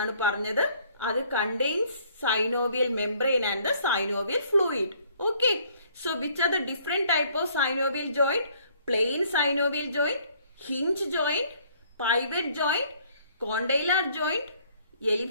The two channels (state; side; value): inverted; both; correlation -0.61